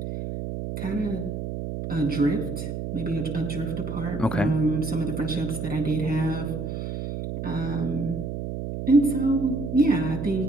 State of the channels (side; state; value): right; noise; hum, 5 dB below the sound